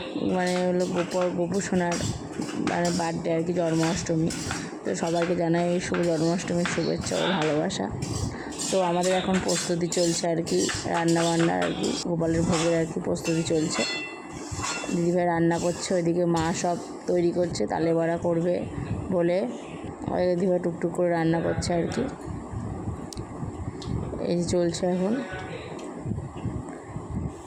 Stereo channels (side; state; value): both; identical; correlation 1.00